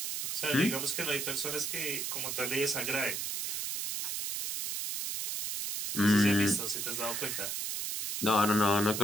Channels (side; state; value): right; noise; hiss, 3 dB below the sound